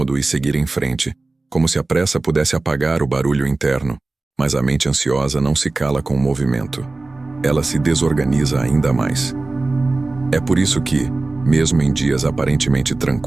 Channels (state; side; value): quieter; left; 3.3 dB